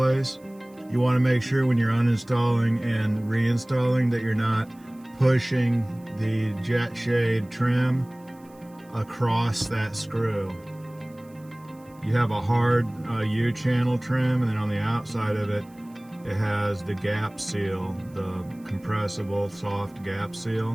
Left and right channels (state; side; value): noise; right; hiss, 30 dB below the sound